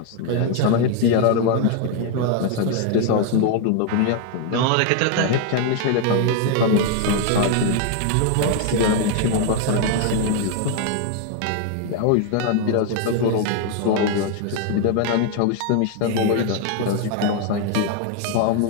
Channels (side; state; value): both; different; correlation 0.00